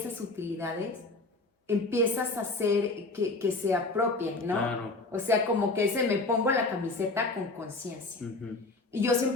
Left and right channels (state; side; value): quieter; right; 3.2 dB